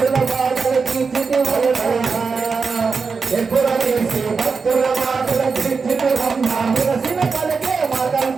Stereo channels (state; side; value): quieter; left; 4.9 dB